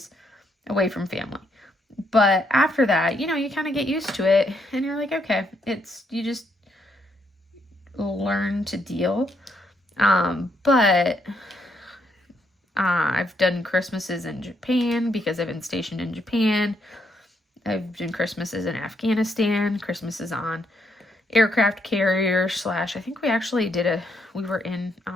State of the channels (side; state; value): both; normal; correlation 0.75